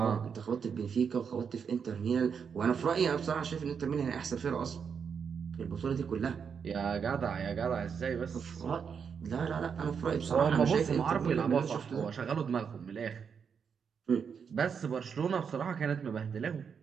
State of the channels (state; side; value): quieter; left; 6.6 dB